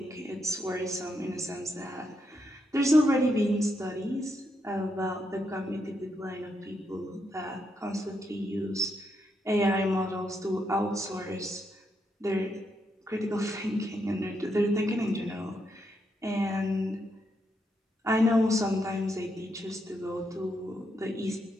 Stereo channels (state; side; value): normal; both; correlation 0.80